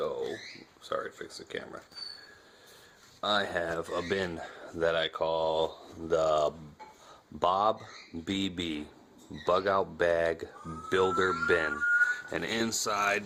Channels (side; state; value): both; identical; correlation 1.00